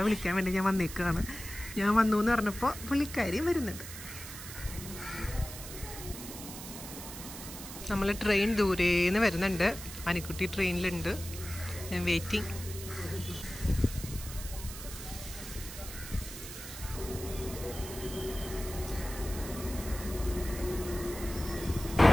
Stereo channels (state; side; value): noise; right; hiss, 11 dB below the sound